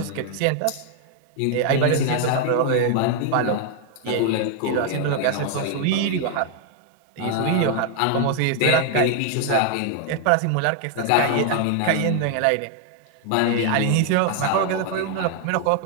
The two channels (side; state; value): both; different; correlation 0.00